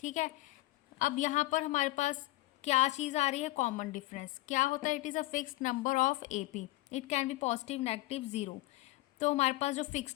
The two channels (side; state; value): right; quieter; 18.6 dB